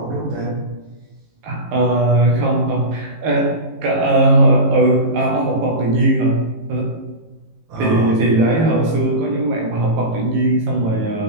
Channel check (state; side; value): late; left; 18 ms